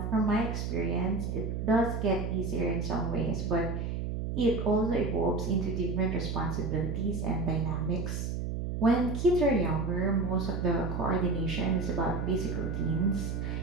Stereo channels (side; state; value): right; noise; hum, 3 dB below the sound